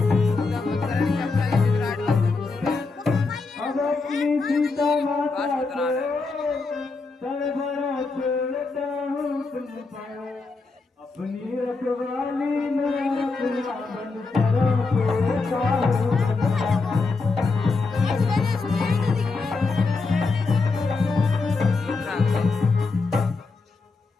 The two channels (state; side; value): quieter; right; 4.0 dB